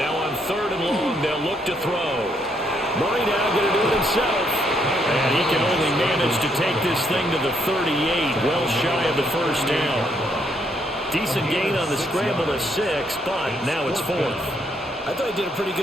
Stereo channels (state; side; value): normal; both; correlation 0.73